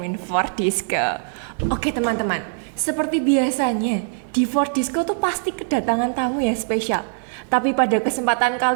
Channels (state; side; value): silent; left; digital silence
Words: Fordisco. Oke teman-teman, seperti biasanya di Fordisco tuh pasti kedatangan tamu yang spesial. Tapi pada kesempatan